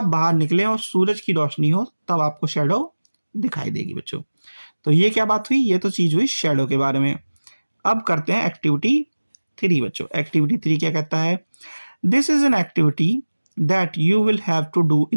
बाहर निकलें और सूरज की रोशनी हो तब आपको शेडो दिखाई देगी बच्चों। तो ये क्या बात हुई, ये तो चीज हुई शेडो के बारे में। अब करते हैं एक्टिविटी 3 बच्चों। एक्टिविटी 3 क्या कहता है, this is an activity that you will have to do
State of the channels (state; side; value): inverted; both; correlation -1.00